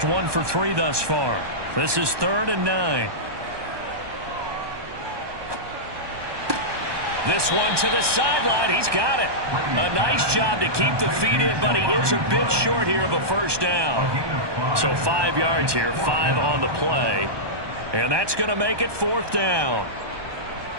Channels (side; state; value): left; late; 1.2 ms